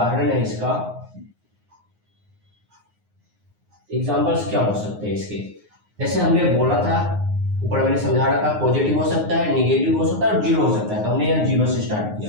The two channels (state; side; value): late; left; 9.6 ms